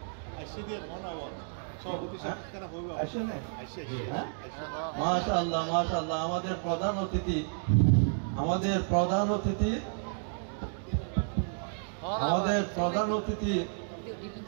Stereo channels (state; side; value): silent; left; digital silence